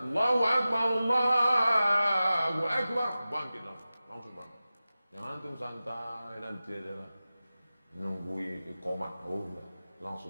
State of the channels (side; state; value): both; inverted; correlation -0.95